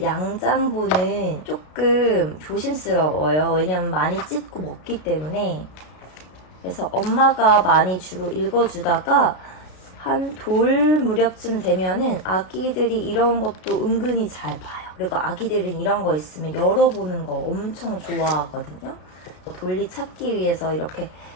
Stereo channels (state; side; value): late; right; 33 ms